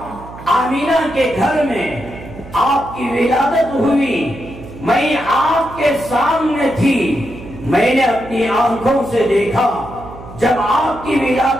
آمینہ کے گھر میں آپ کی ولادت ہوئی، میں آپ کے سامنے تھی، میں نے اپنی آنکھوں سے دیکھا جب آپ کی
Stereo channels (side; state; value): right; noise; hum, 16 dB below the sound